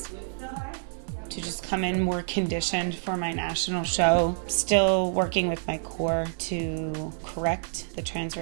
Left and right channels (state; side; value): silent; left; 60 dB below the other